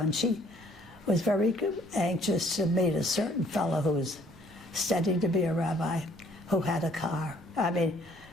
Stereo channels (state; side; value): noise; right; rumble, 25 dB below the sound